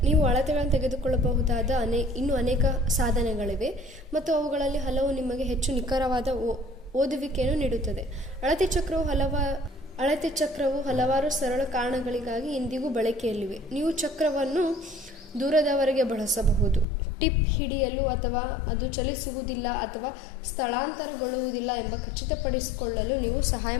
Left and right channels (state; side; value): drops out; right; at 16.9 s